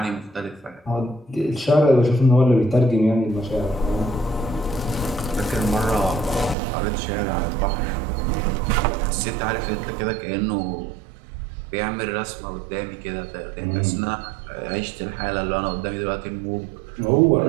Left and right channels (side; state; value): left; drops out; at 6.6 s